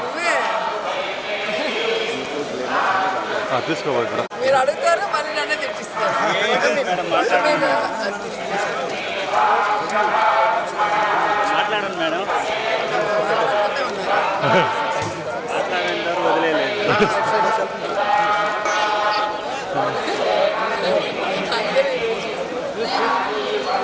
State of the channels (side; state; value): both; identical; correlation 1.00